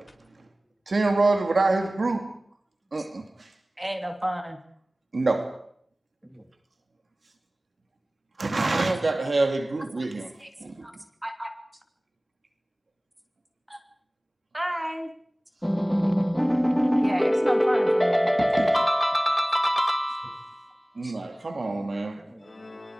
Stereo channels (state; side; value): normal; both; correlation 0.98